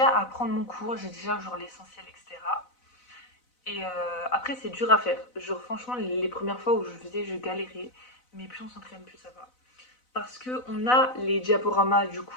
apprendre mon cours, j'ai déjà genre l'essentiel, etc. Et après, c'est dur à faire. Genre, franchement, les premières fois où je faisais, je galérais. Mais plus on s'entraîne, plus ça va. Parce que on a les diaporamas du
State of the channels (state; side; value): late; right; 4.0 ms